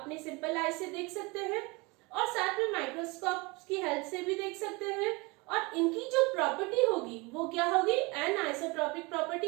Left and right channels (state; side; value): quieter; left; 26.2 dB